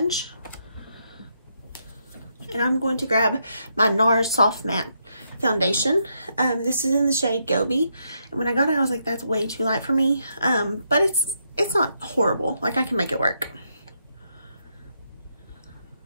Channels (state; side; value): inverted; both; correlation -0.79